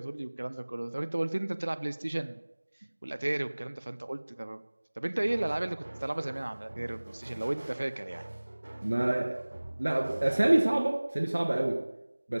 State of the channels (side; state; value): both; inverted; correlation -1.00